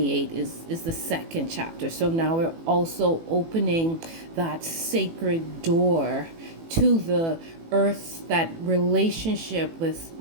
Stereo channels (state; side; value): late; left; 18 ms